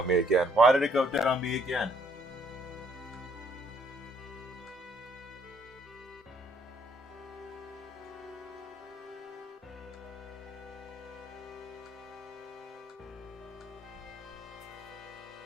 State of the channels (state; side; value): normal; both; correlation 0.65